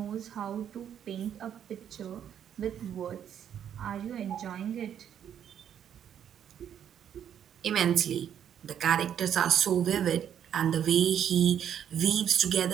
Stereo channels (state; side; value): quieter; left; 9.3 dB